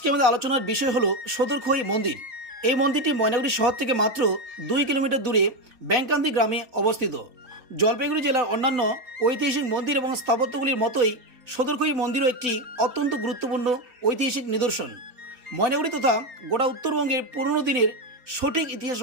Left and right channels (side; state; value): left; late; 4.0 ms